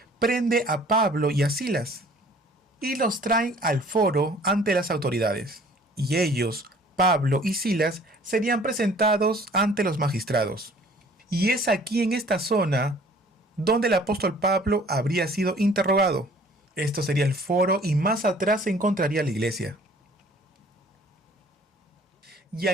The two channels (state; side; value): normal; both; correlation 0.53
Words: prende a Pablo y a Silas y los traen al foro ante las autoridades. Y ellos, Pablo y Silas, serían presentados ante los magistrados. Y es aquí en esta zona donde el apóstol Pablo habría sido interrogado. Esto sería el foro y más atrás se encontraría la iglesia. Y